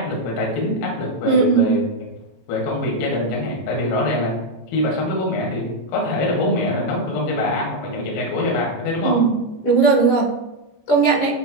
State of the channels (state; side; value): late; right; 17 ms